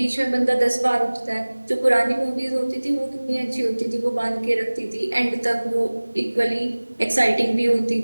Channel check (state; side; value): inverted; both; correlation -1.00